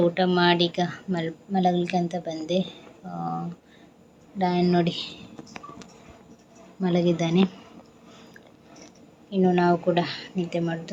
ಊಟ ಮಾಡಿ ಈಗ ಮಲಗಲಿಕ್ಕೆ ಅಂತ ಬಂದೆ. ರಾಯನ್ ನೋಡಿ ಮಲಗಿದ್ದಾನೆ. ಇನ್ನು ನಾವು ಕೂಡ ನಿದ್ದೆ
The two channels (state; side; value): identical; both; correlation 1.00